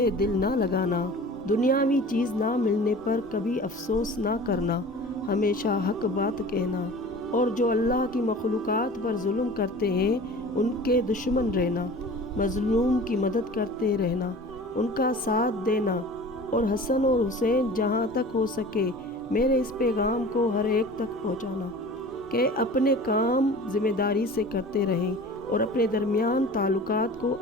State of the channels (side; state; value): both; normal; correlation 0.41